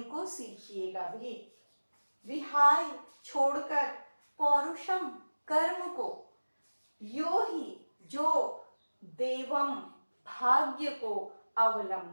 सीखिएगा भी। विहाय छोड़कर, पौरुषम कर्म को, यो ही जो, देवम भाग्य को,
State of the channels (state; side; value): inverted; both; correlation -1.00